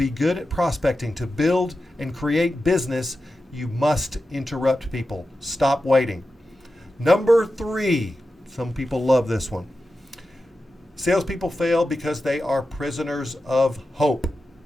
good at prospecting, to build and create business, you must interrupt people. Stop waiting. Number three, some people love this one. Salespeople fail because they are prisoners of hope.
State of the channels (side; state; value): both; normal; correlation 0.92